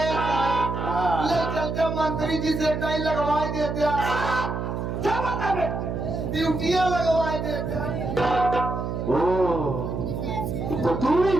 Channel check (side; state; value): right; noise; hum, 3 dB below the sound